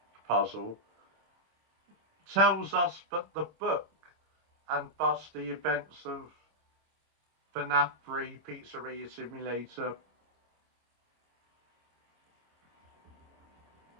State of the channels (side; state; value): left; late; 26 ms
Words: puzzle tells us that the book, and thus the events of FNaF 3 Pizzeria Simulator,